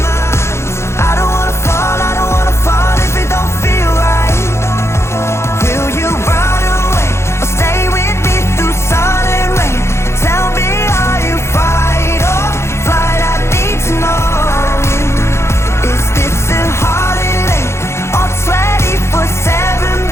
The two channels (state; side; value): late; right; 0.13 ms